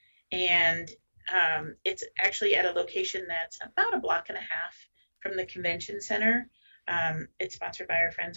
And it's actually at a location that's about a block and a half from the convention center. It's sponsored by our friends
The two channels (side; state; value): both; inverted; correlation -1.00